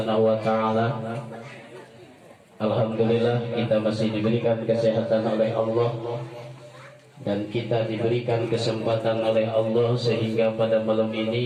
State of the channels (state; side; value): identical; both; correlation 1.00